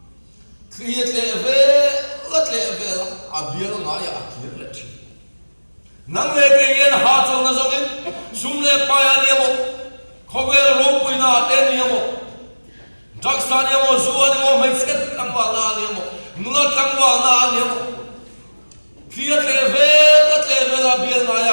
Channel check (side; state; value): both; inverted; correlation -1.00